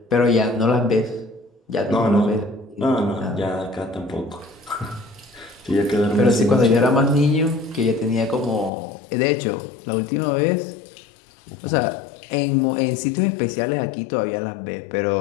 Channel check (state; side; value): drops out; right; at 8.7 s